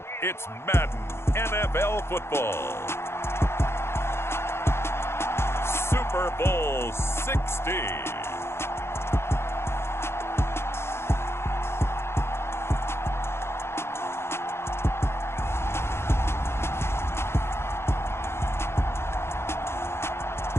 it's Madden NFL football. Super Bowl 60.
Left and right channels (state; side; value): late; right; 0.12 ms